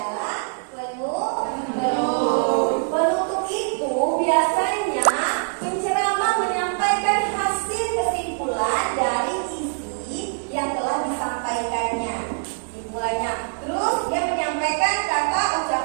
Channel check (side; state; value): left; silent; digital silence